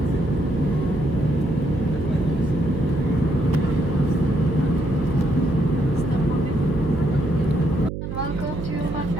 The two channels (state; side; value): noise; right; hum, 6 dB below the sound